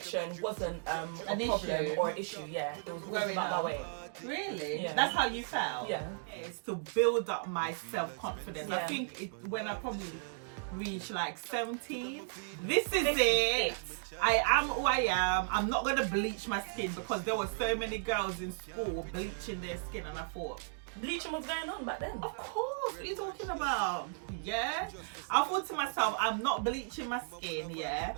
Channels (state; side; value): silent; left; digital silence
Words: wasn't a problem or an issue. Yeah, it was about my weight. Really? Yeah. That's how you felt? Yeah. It's to build up my self-confidence. Yeah. I think when I probably reach like 17, this is it. I am who I am. I'm not gonna bleach my skin because there were so many girls in school bleaching their skin, and I thought, Bleaching was going on back then. of course, what are you talking about? Yeah, I thought to myself, I'm not bleaching my skin. Yeah,